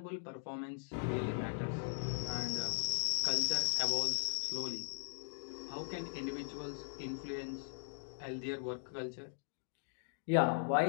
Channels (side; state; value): right; silent; digital silence